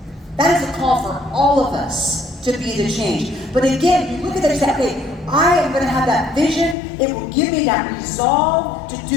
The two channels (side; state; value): right; drops out; at 6.8 s